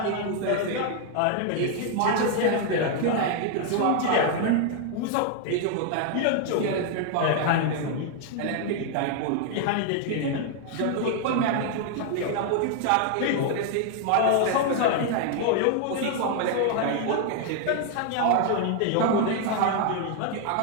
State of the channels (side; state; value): both; different; correlation 0.00